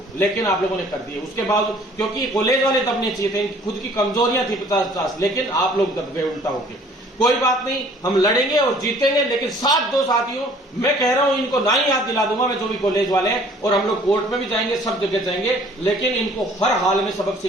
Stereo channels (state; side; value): normal; both; correlation 0.55